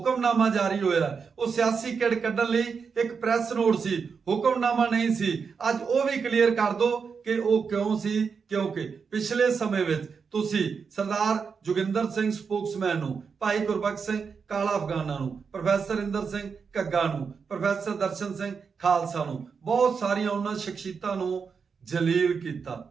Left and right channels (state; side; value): quieter; left; 5.7 dB